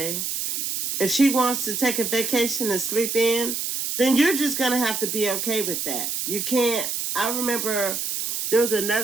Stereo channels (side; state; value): right; noise; hiss, 2 dB below the sound